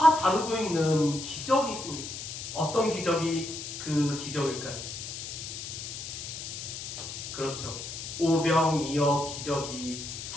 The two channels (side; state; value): left; noise; hiss, 8 dB below the sound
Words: 다루고 있는 기적이 있습니다. 어떤 기적이 그 기적일까요? 그렇죠. 오병이어 기적이